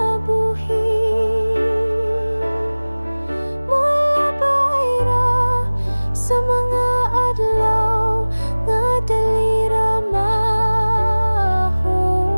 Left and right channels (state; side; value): inverted; both; correlation -1.00